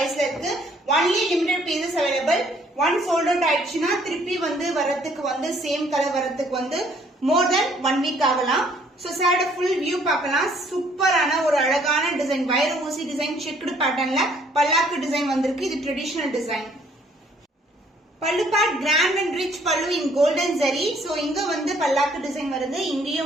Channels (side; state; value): both; normal; correlation 0.62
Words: இருக்கு. Only limited pieces available. One sold out ஆயிடுச்சுன்னா திருப்பி வந்து வரதுக்கு வந்து சேம் கலர் வரதுக்கு வந்து மோர் தென் 1 வீக் ஆகலாம். சோ சாரோட ஃபுல் வியூ பார்க்கலாம். சூப்பரான ஒரு அழகான டிசைன். வைர ஊசி டிசைன் செக்குடு பேட்டர்ன்ல பல்லாக்கு டிசைன் வந்திருக்கு. இது ட்ரெடிஷனல் டிசைன். பல்லு பார்ட் கிராண்ட் அண்ட் ரிச் பல்லு இன் கோல்டன் ஜரி. சோ இங்க வந்து பல்லாக்கு டிசைன் வருது,